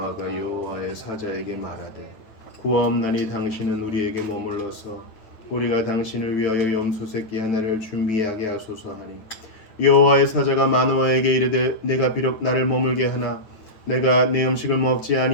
여호와의 사자에게 말하되 구하옵나니 당신은 우리에게 머물러서 우리가 당신을 위하여 염소 새끼 하나를 준비하게 하소서 하니 여호와의 사자가 마노아에게 이르되 내가 비록 나를 머물게 하나 내가 내 음식을 먹지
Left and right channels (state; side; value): late; right; 9.4 ms